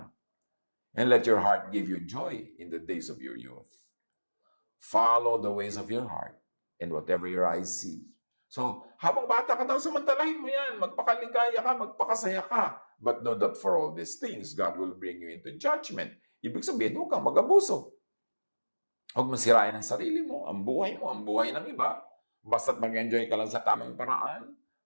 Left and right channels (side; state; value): both; inverted; correlation -1.00